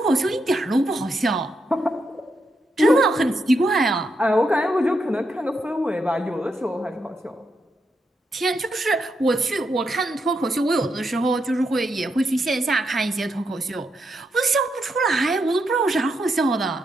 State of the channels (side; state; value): both; normal; correlation 0.82